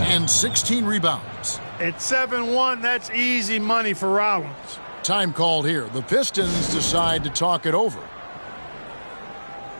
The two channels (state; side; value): inverted; both; correlation -1.00